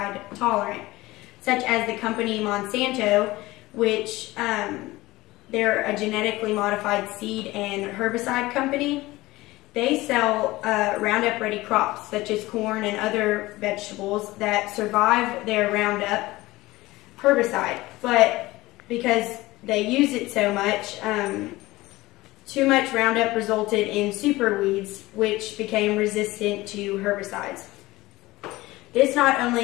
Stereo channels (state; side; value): quieter; right; 19.2 dB